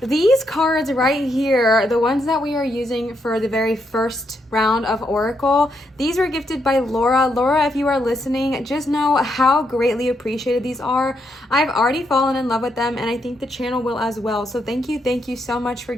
These cards right here, the ones that we are using for the very first round of Oracle, these were gifted by Laura. Laura, if you are listening, just know how greatly appreciated these are. I've already fallen in love with them, and I think the channel will as well. So thank you so much for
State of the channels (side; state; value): both; normal; correlation 0.79